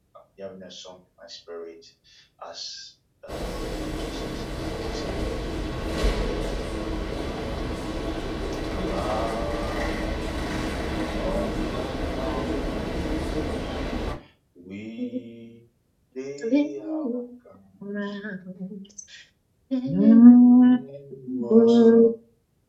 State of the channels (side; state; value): both; identical; correlation 1.00